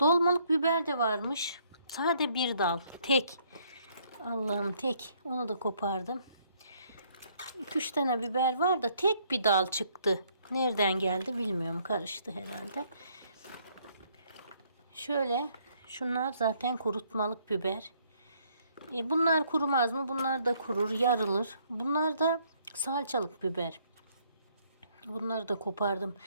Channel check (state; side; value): inverted; both; correlation -0.66